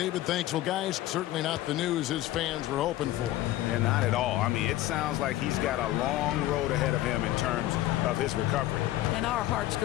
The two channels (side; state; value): right; quieter; 15.1 dB